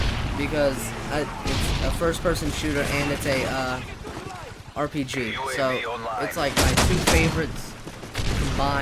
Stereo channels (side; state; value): both; identical; correlation 1.00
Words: because it's a first-person shooter and it's a RPG. So it's like my two favorites